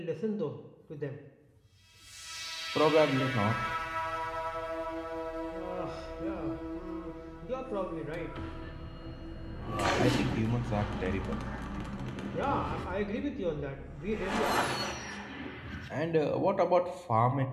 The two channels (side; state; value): both; identical; correlation 1.00